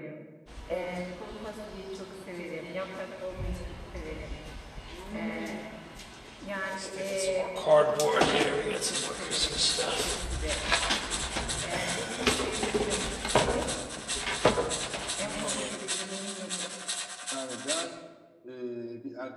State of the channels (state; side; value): identical; both; correlation 1.00